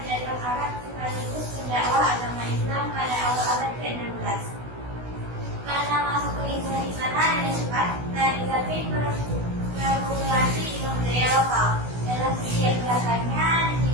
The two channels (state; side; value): late; left; 16 ms